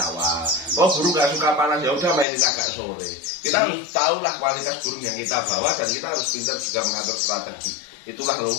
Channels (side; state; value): right; drops out; at 2.2 s